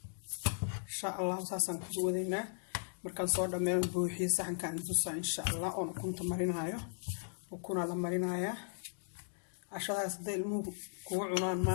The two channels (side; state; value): right; silent; digital silence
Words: insha allah. saasaan ku wadaynaa markaan soo dhammeeyo buuxiyo saxankaan tusaa insha allah. oon ukunta marinayo. ukunaa la marinayaa. cashadaas hadday ilmuhu kugu cunaan